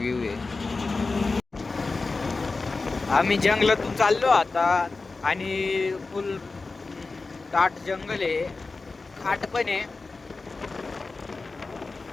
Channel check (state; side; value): quieter; right; 3.8 dB